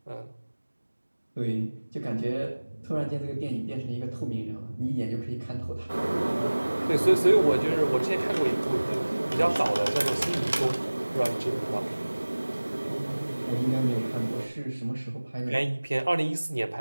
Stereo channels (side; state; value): both; inverted; correlation -1.00